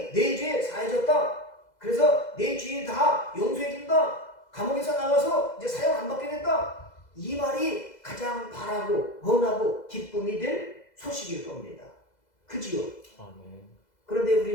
내 죄 사해졌다. 그래서 내 죄 다 용서해준다. 감옥에서 나와서 이제 사형 안 받게 됐다. 이 말이 가장 바라고 원하고 기쁨이 될 소식일 겁니다. 그지요? 그런데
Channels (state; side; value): late; right; 2.0 ms